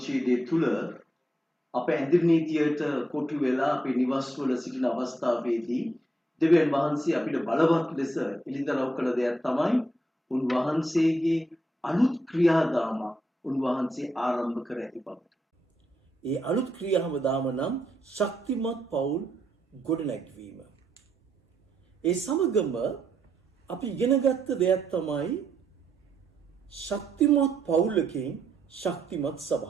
තුළ අප ඇඳිරි නීතියට කොටු වෙලා අපේ නිවස්වල සිටින අවස්ථාවේදී දෙවියන් වහන්සේ අපිට බලවත් ලෙස එළිදරව් කළ දෙයක් තමයි උන්වහන්සේගේ අලුත් ක්‍රියාදාම උන්වහන්සේ ආරම්භ කර ඇති බව. ඒ අලුත් ක්‍රියාදාම නම් ශක්තිමත් පවුල් ගොඩනැගීම. ඒ සමගම අපි ඉගෙනගත්ත දෙයක් තමයි ශක්තිමත් පවුලකින් ශක්තිමත්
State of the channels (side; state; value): both; normal; correlation 0.79